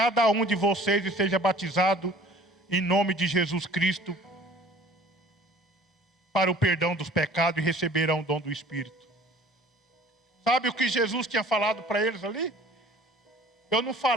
um de vocês, e seja batizado em nome de Jesus Cristo para o perdão dos pecados, e receberão o dom do Espírito. Sabe o que Jesus tinha falado para eles ali? Eu não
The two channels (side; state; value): both; normal; correlation 0.49